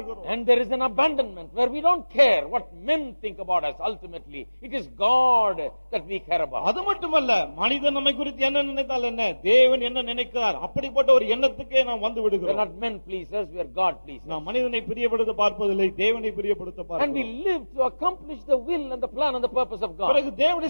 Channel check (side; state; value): both; inverted; correlation -1.00